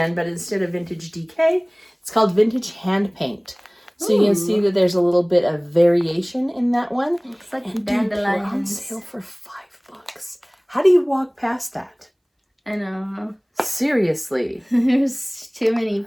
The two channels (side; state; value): both; identical; correlation 1.00